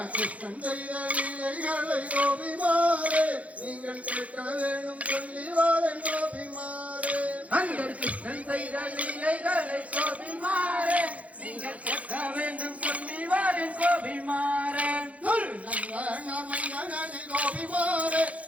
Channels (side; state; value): left; late; 0.067 ms